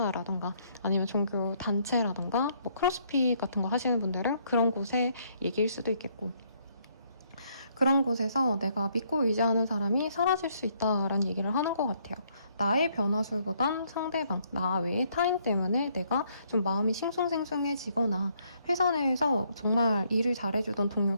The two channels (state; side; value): inverted; both; correlation -0.69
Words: 아니면 종교 단체라던가 크로스핏 같은 거 하시는 분들은 그런 곳의 얘기일 수도 있겠고, 그런 곳에서 내가 믿고 의지하는 사람이 사라질 수 있다라는 얘기를 하는 것 같아요. 나의 변화술보단 상대방, 나 외의 타인 때문에 내가 좀 마음이 싱숭생숭해지거나 회사 내에서 정말 일을 잘해주던